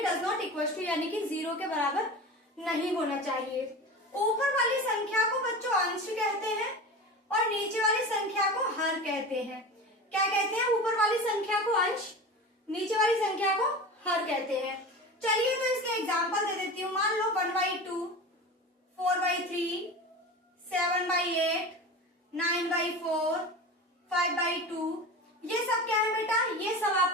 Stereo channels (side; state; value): both; normal; correlation 0.31